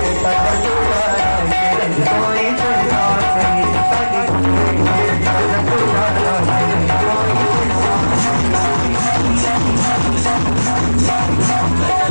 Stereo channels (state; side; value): inverted; both; correlation -1.00